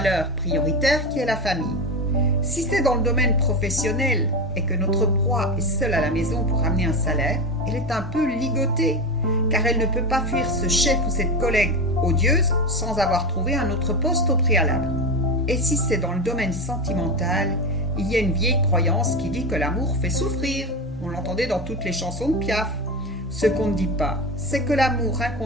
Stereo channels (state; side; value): normal; both; correlation 0.19